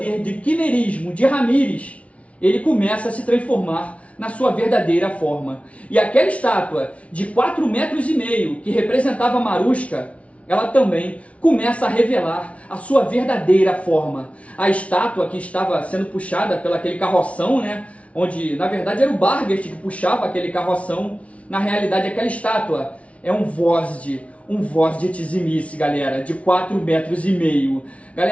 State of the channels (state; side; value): late; right; 0.064 ms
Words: de quimerismo de Ramírez. Ele começa a se transformar na sua verdadeira forma. E aquela estátua de 4,5 metros que representava Marushka, ela também começa a revelar a sua verdadeira forma. A estátua que estava sendo puxada pelo aquele carroção, né, onde na verdade era o Barghest que puxava aquele carroção, na realidade aquela estátua é um Vozd Tzimice, galera, de 4,5 metros.